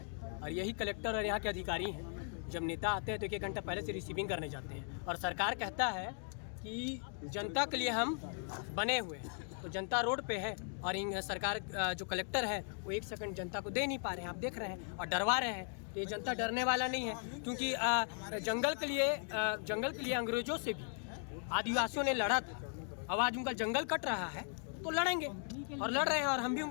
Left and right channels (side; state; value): right; silent; 52 dB below the other